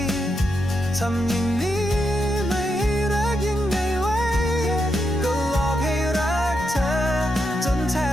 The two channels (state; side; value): normal; both; correlation 0.83